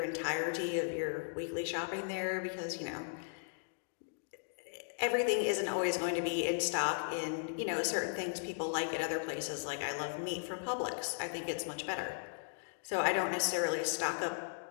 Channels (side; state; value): right; silent; digital silence